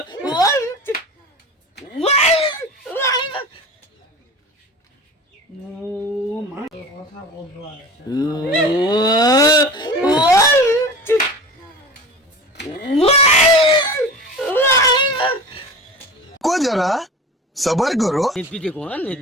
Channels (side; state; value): both; normal; correlation 0.35